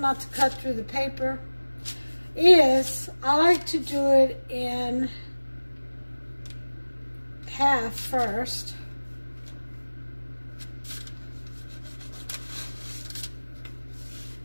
to cut through the paper, is I like to do it in half first.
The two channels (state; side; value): inverted; both; correlation -1.00